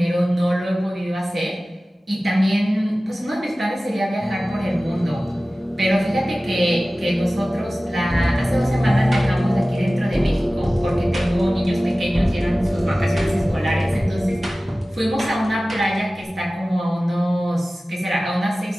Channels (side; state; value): both; normal; correlation 0.97